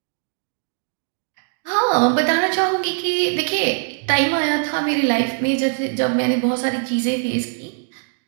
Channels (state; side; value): silent; left; digital silence